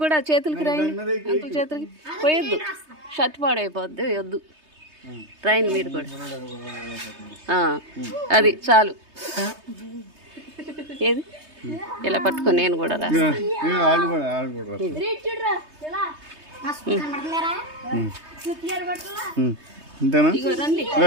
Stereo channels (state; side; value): late; left; 3.2 ms